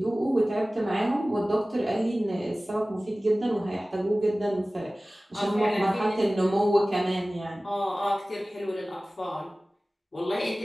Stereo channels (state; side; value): normal; both; correlation 0.98